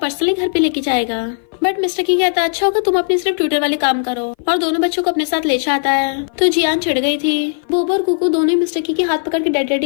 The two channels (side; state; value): right; silent; 58 dB below the other